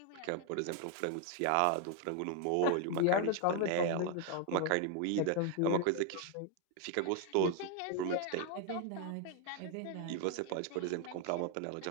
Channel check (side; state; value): both; different; correlation 0.01